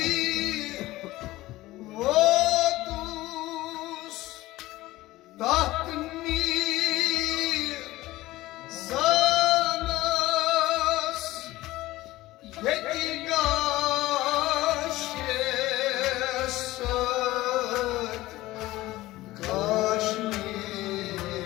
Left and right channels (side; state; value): right; quieter; 17.6 dB